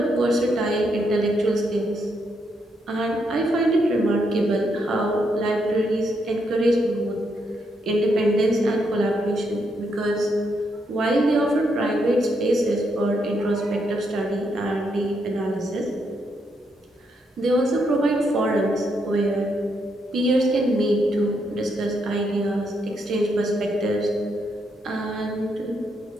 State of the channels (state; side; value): normal; both; correlation 0.78